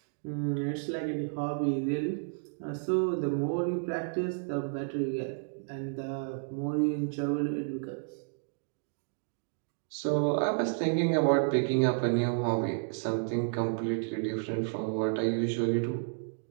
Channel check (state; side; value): silent; left; digital silence